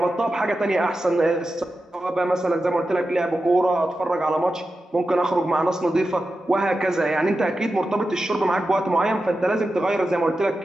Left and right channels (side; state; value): both; normal; correlation 0.91